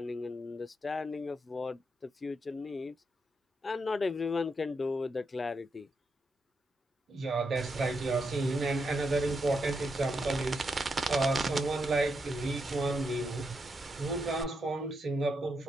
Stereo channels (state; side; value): normal; both; correlation 0.82